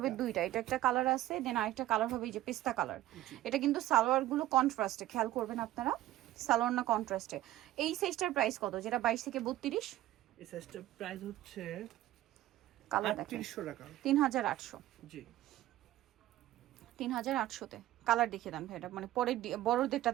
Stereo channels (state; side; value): quieter; left; 14.9 dB